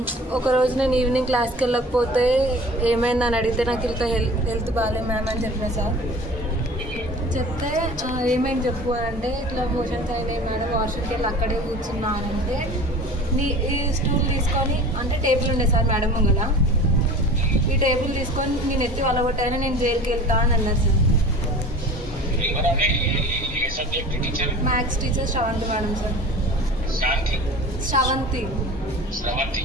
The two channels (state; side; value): normal; both; correlation 0.40